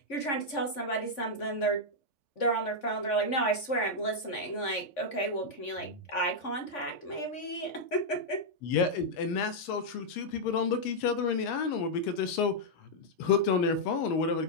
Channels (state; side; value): late; right; 3.5 ms